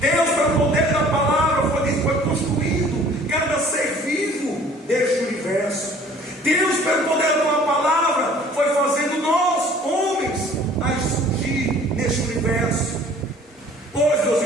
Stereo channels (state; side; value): normal; both; correlation 0.52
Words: Deus, pelo poder da palavra, foi construindo cada ser vivo deste universo. Deus, pelo poder da palavra, foi fazendo nós, homens, a surgir neste universo. Pois, meus